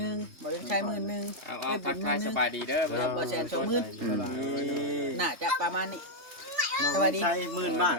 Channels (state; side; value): late; left; 3.2 ms